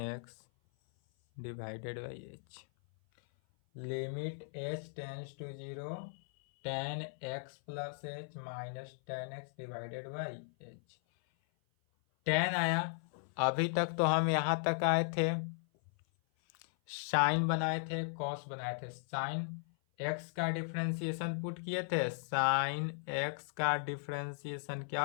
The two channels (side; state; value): right; silent; 53 dB below the other